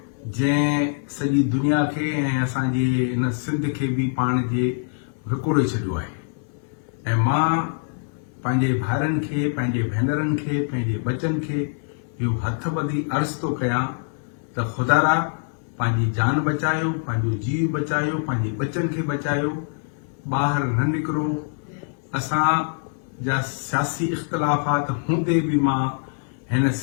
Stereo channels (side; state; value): right; silent; digital silence